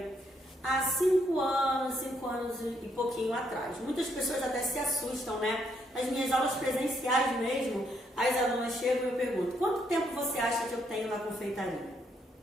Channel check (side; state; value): both; normal; correlation 0.74